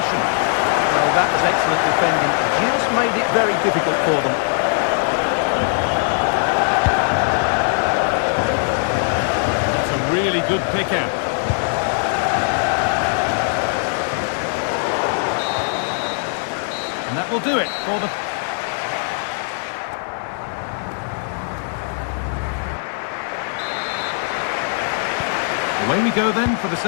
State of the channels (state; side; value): silent; right; 58 dB below the other